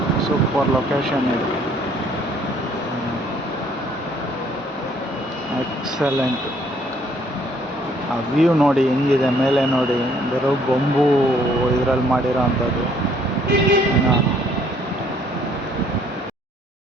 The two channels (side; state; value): both; normal; correlation 0.63